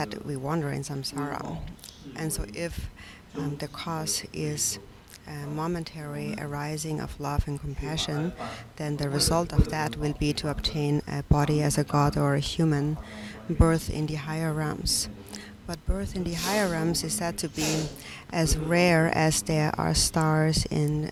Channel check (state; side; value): identical; both; correlation 1.00